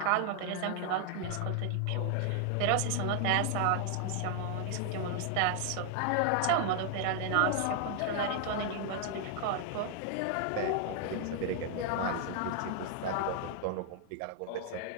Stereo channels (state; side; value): different; both; correlation 0.00